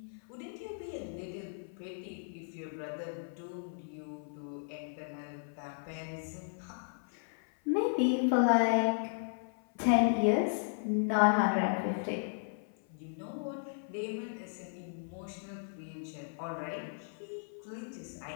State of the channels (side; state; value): right; silent; 54 dB below the other